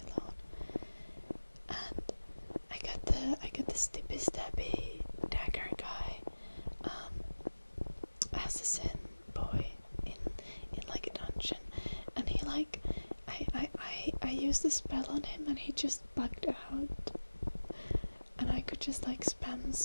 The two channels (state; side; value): inverted; both; correlation -1.00